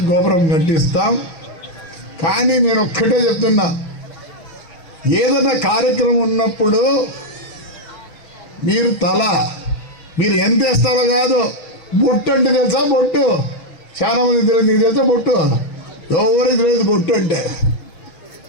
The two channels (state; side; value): late; right; 6.2 ms